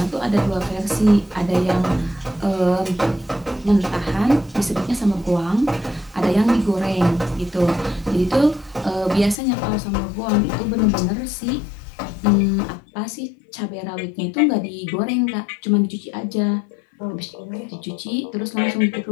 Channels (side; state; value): right; drops out; at 9.3 s